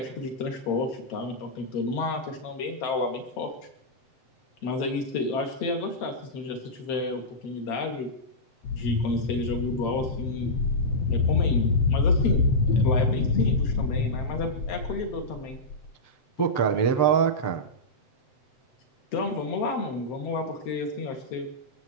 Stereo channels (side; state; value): right; late; 7.7 ms